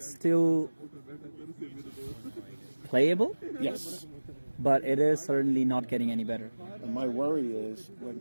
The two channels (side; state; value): both; inverted; correlation -1.00